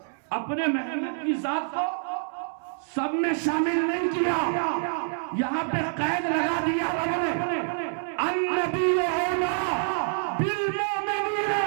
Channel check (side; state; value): left; silent; 60 dB below the other